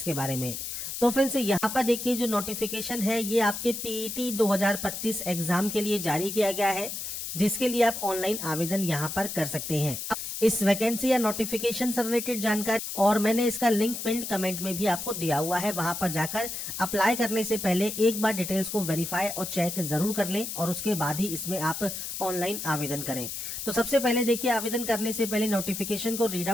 के बारे में। तो फ्रेंड्स यहाँ पर देखिए, जो नोटिफिकेशन है ये आपके पीईटी 2025 एग्जाम के लिए जारी किया गया है, जिसके लिए आप ऑनलाइन आवेदन यहाँ पर कर सकते हैं। इस वैकेंसी या नोटिफिकेशन से रिलेटेड जानकारी और मैंने इसका लिंक पिन कमेंट में भी आपको दिया हुआ है, वहां पर जाकर अप्लाई करने से पहले एक बार डिटेल्स को वेरीफाई और चेक जरूर कर लें और उसके बाद ही इसमें आप ऑनलाइन आवेदन करें। तो सबसे पहले देखिए, आवेदन करने से पहले नोटिफिकेशन को रीड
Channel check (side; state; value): left; noise; hiss, 6 dB below the sound